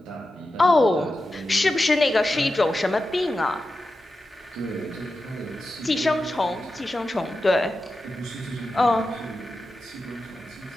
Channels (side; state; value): both; normal; correlation 0.92